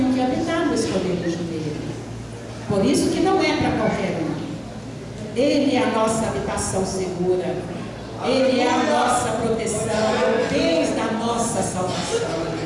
que habitar no esconderijo dele. Por isso que não é para qualquer um. Ele é a nossa habitação segura. Ele é a nossa proteção, é o Deus da nossa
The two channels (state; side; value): identical; both; correlation 1.00